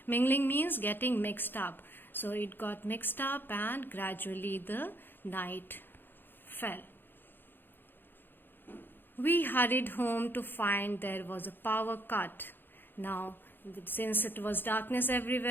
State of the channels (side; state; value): right; late; 0.097 ms